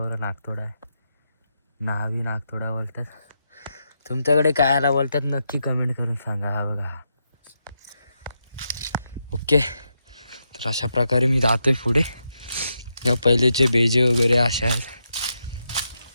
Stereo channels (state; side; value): inverted; both; correlation -0.84